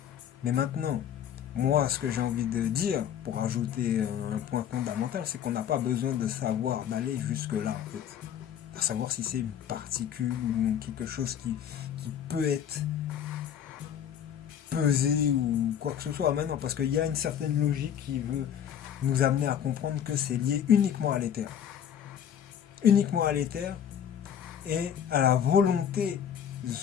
Mais maintenant, moi ce que j'ai envie de dire, pour ajouter un point fondamental, c'est qu'on n'a pas besoin de savoir, d'aller jusque là en fait. À savoir si c'est une particule ou quelque chose qui peut être pesé ou quoi que ce soit maintenant, parce qu'il y a une certaine logique qui veut nous amener à comprendre que c'est lié uniquement à l'éther. Uniquement à l'éther et à la volonté de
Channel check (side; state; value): right; quieter; 9.1 dB